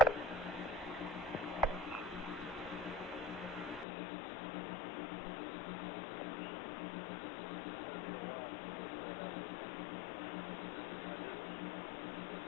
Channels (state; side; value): drops out; right; at 3.9 s